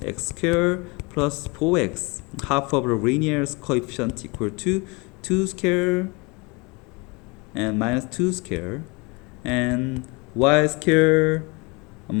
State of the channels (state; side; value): quieter; right; 28.0 dB